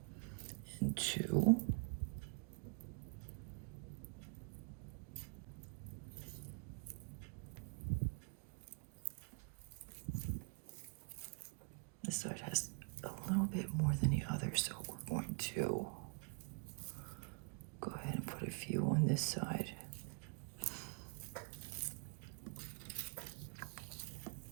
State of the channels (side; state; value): left; quieter; 34.8 dB